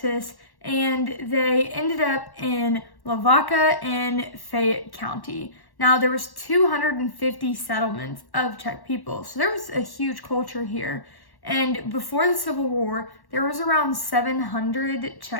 And they ended up in Lavaca and Fayette County. Now, there was 250 settlements of Czech people, so there was a huge culture here. And before the Civil War, there was around 700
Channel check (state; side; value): late; right; 1.1 ms